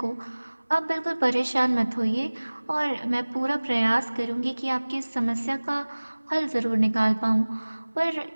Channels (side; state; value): both; inverted; correlation -1.00